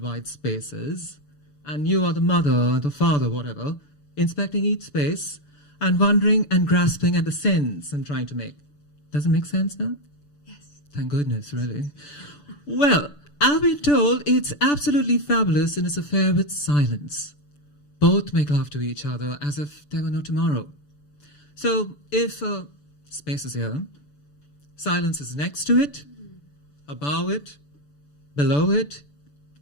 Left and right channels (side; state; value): right; late; 6.9 ms